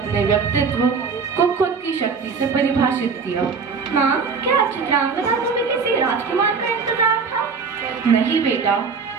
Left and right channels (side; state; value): left; quieter; 5.4 dB